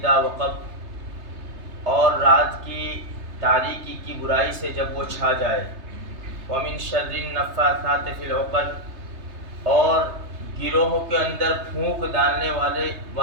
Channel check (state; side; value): late; left; 3.3 ms